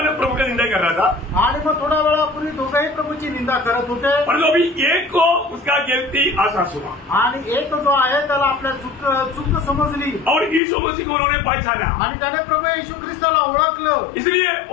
प्रभु का निंदा कर रहा था. आणि मग थोड्या वेळापूर्वी दोघंही प्रभूची निंदा करत होते. परंतु अभी एक को उसका गलती आसास हुआ आणि एक जो आहे त्याला आपल्या चूक समजली. और यीशु मसीह को उन्होंने पहचाना. आणि त्याने प्रभू येशू ख्रिस्ताला ओळखलं. इसलिए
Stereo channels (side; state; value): right; drops out; at 10.6 s